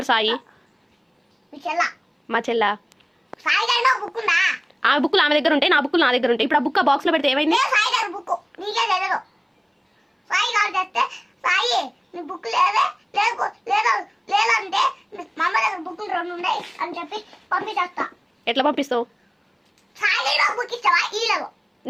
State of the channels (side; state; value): both; identical; correlation 1.00